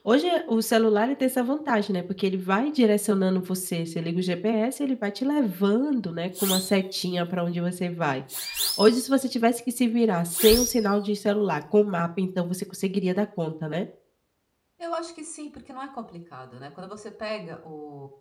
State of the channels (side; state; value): both; identical; correlation 1.00